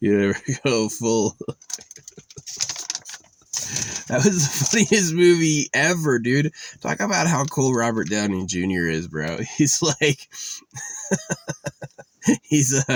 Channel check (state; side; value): identical; both; correlation 1.00